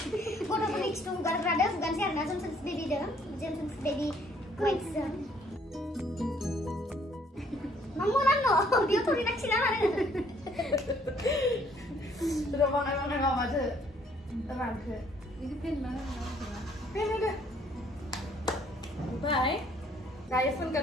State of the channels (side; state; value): both; normal; correlation 0.63